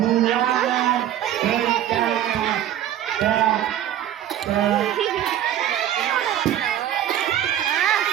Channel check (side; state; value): left; quieter; 11.4 dB